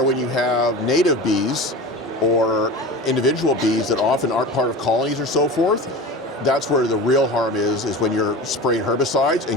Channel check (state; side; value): normal; both; correlation 0.32